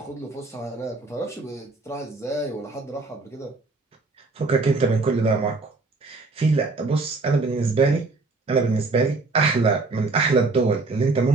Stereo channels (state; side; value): quieter; left; 3.6 dB